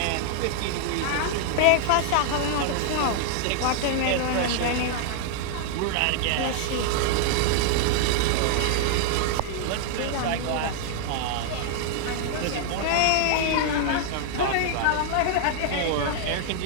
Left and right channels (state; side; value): different; both; correlation -0.01